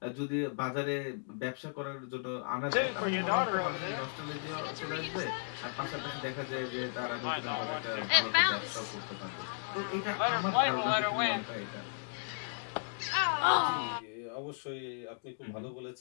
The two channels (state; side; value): silent; right; digital silence